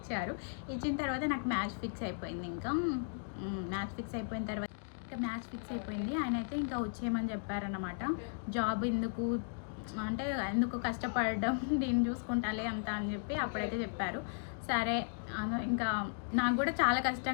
ఇచ్చిన తర్వాత నాకు మ్యాచ్ ఫిక్స్ అయిపోయింది. ఇంకా మ్యాచ్ ఫిక్స్ అయిపోయిన తర్వాత ఆయన అయితే ఇంకా వచ్చేయమని చెప్పారన్నమాట. జాబ్ ఎందుకు, అంటే ఎందుకు కష్టపడడం, దీన్ని చూసుకుంటాలే అంత అని చెప్పి అప్పుడైతే చెప్పారు. సరే ఇంకా నాకు కూడా చాలా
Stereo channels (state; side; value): silent; right; digital silence